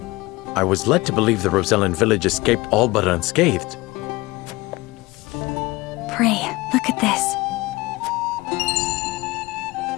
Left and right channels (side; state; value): right; quieter; 21.5 dB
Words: I was led to believe the Rosellan village escaped all but unscathed. Pray, look at this.